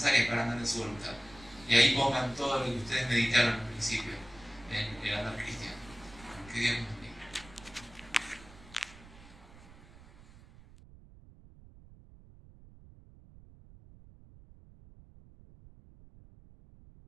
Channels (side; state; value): right; noise; rumble, 21 dB below the sound